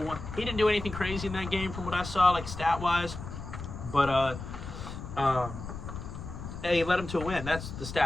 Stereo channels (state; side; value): noise; left; rumble, 9 dB below the sound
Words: He didn't do anything crazy in that game from what I saw, like stat-wise. But, hey, he led him to a win. That's the